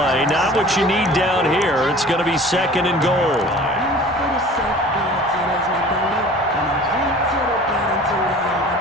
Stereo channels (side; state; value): both; normal; correlation 0.44